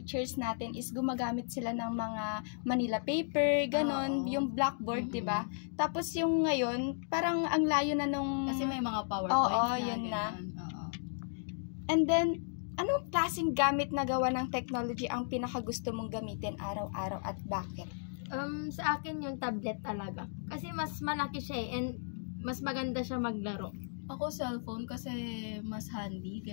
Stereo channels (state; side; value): silent; right; digital silence